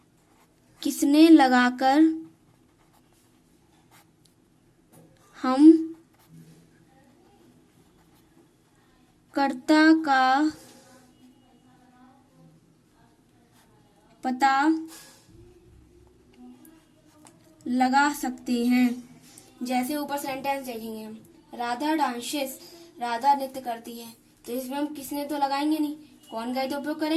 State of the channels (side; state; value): both; identical; correlation 1.00